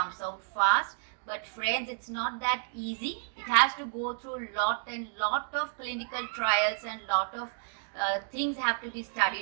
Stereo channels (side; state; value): left; silent; digital silence